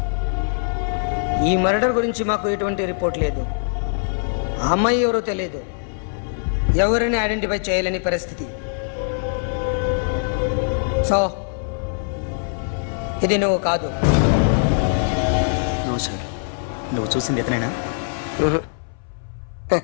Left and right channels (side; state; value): right; silent; 60 dB below the other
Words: ఈ మర్డర్ గురించి మాకు ఎటువంటి రిపోర్ట్ లేదు. ఆ అమ్మాయి ఎవరో తెలియదు. ఎవరిని ఐడెంటిఫై చేయలేని పరిస్థితి. సో ఇది నువ్వు కాదు. No sir. నువ్వు చూసింది ఇతనేనా?